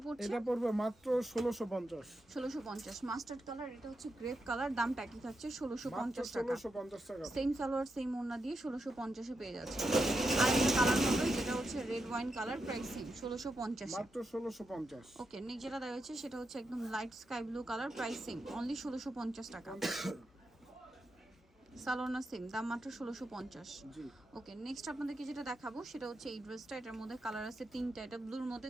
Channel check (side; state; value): both; normal; correlation 0.86